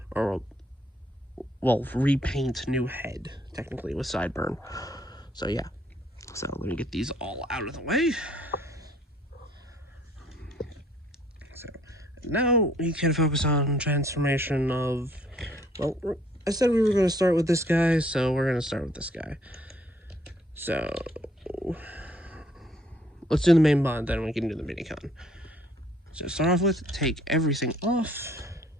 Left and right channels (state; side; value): normal; both; correlation 0.63